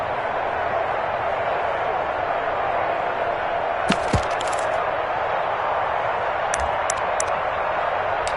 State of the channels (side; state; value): both; identical; correlation 1.00